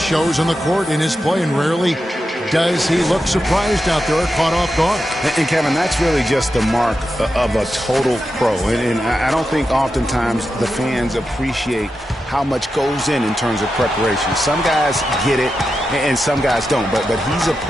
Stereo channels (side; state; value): both; normal; correlation 0.89